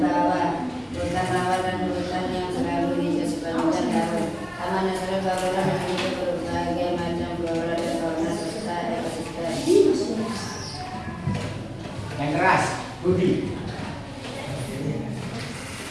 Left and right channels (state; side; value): identical; both; correlation 1.00